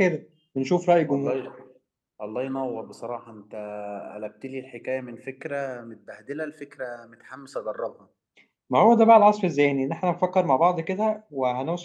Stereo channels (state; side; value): identical; both; correlation 1.00